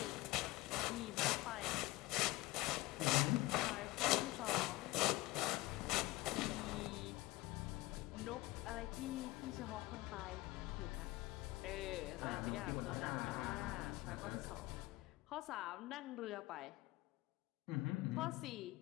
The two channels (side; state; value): right; quieter; 19.5 dB